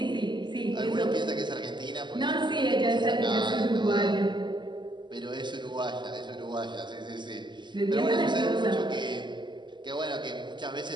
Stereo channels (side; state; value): left; late; 0.22 ms